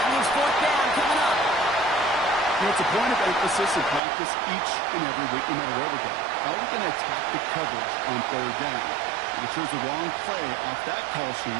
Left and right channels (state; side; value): drops out; left; at 4.0 s